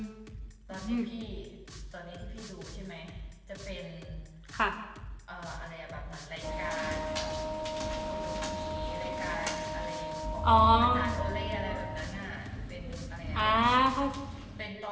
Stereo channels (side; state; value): both; identical; correlation 1.00